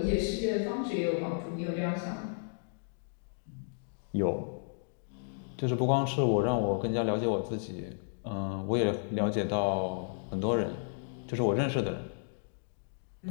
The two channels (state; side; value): silent; right; digital silence